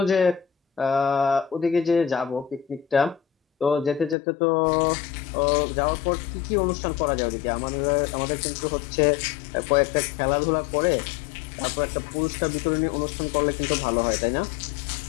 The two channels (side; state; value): right; drops out; at 4.2 s